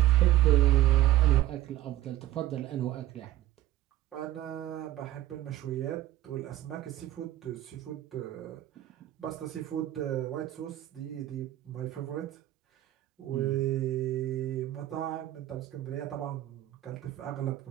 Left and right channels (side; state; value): left; quieter; 14.1 dB